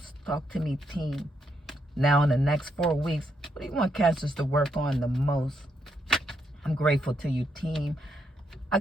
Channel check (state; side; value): normal; both; correlation 0.78